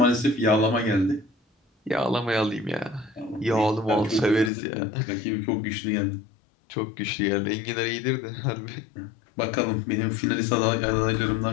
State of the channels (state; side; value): drops out; right; at 4.5 s